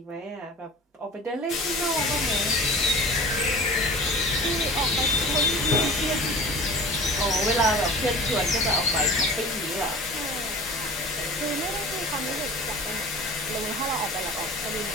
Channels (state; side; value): normal; both; correlation 0.39